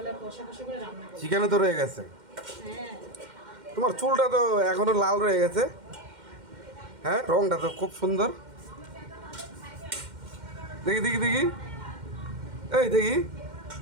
কষা কষা করে রান্না করবো। চিকেনও তো রয়ে গেছে। হ্যাঁ। তোমার চুলটা তো এখনো লাল রয়ে গেছে। হ্যাঁ, রংটা তো খুব সুন্দর। দেখি দেখি দেখি, এই দেখি,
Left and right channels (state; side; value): late; left; 2.1 ms